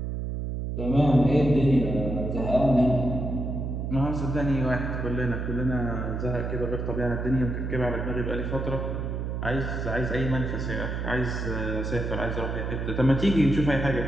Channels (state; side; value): noise; right; hum, 3 dB below the sound